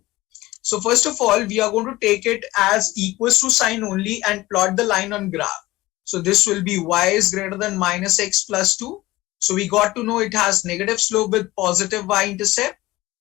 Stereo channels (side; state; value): right; quieter; 18.5 dB